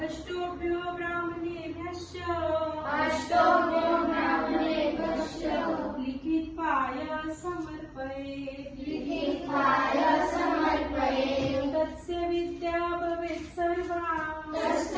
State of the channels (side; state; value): both; identical; correlation 1.00